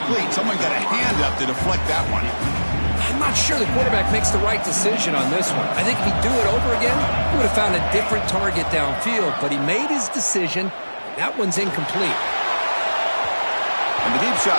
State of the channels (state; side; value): inverted; both; correlation -1.00